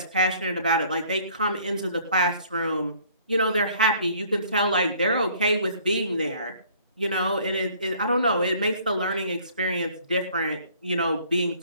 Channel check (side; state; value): both; inverted; correlation -0.57